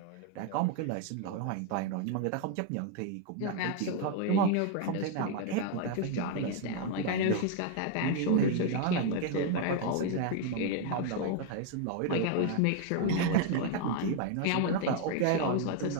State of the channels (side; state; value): both; different; correlation 0.00